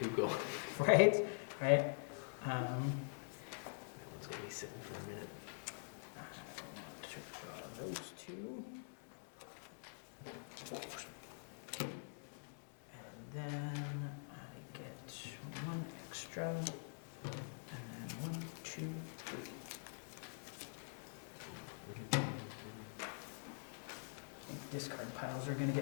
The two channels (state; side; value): silent; right; digital silence